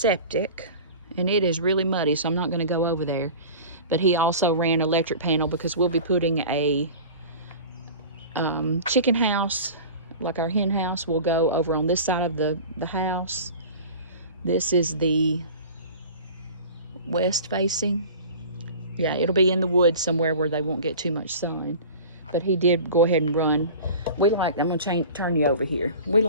and it is really muddy, so I'm not going to go over there. But he also ran electric panel, because we'll be putting a chicken house, like our hen house, will go over on this side of the house. This is the west facing. Yeah, it'll be in the woods somewhere where they won't get too much sun. But he did go ahead and run. We like, I'm gonna turn you over here. We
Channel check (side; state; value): both; inverted; correlation -0.38